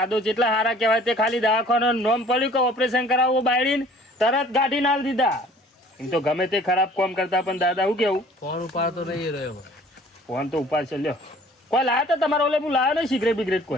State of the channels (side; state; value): both; normal; correlation 0.52